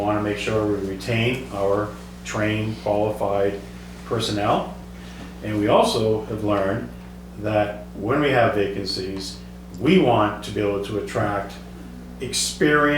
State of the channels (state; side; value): identical; both; correlation 1.00